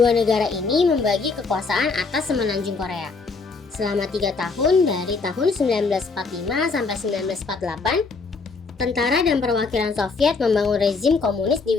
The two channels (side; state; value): right; quieter; 4.4 dB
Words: negara ini membagi kekuasaan atas semenanjung Korea. Selama 3 tahun dari tahun 1945 sampai 1948, tentara dan perwakilan Soviet membangun rezim komunis di